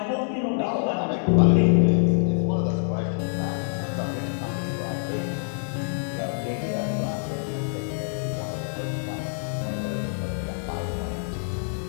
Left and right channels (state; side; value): silent; right; digital silence